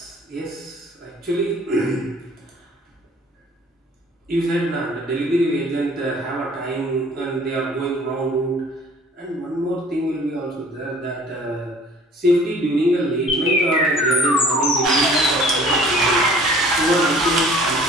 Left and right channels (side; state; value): both; normal; correlation 0.51